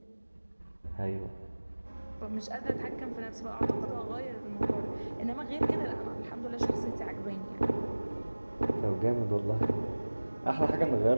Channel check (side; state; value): both; inverted; correlation -1.00